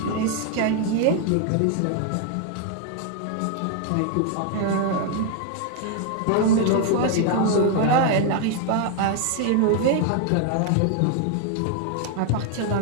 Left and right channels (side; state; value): both; different; correlation 0.00